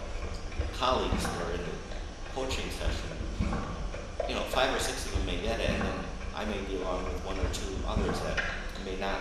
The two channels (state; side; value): identical; both; correlation 1.00